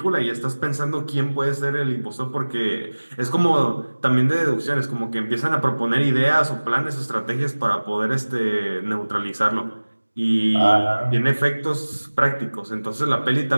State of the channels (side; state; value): both; inverted; correlation -1.00